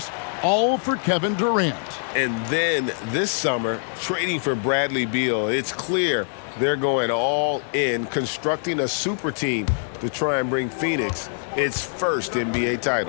all for Kevin Durant. And then this summer, trading for Bradley Beal. It's clear they're going all in, constructing a super team to try and bring Phoenix its first NBA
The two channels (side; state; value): right; silent; digital silence